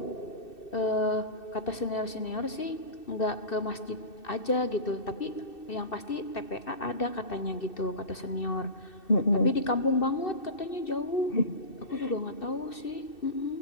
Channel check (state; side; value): late; right; 2.7 ms